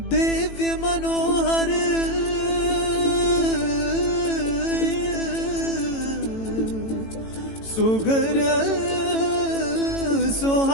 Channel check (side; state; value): right; late; 18 ms